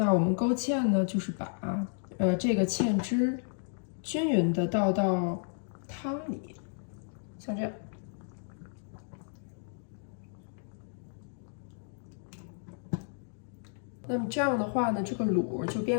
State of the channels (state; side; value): silent; right; digital silence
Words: 我们勾芡呢，就是把这个芡汁均匀的倒到汤里，像这样。那么这样的话呢，这个卤就